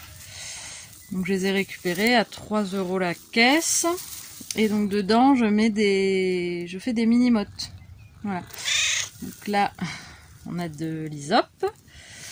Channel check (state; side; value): identical; both; correlation 1.00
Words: Donc je les ai récupérées à 3 € la caisse. Et donc dedans, je fais des mini-mottes. Voilà. Donc là, on a de l'hysope.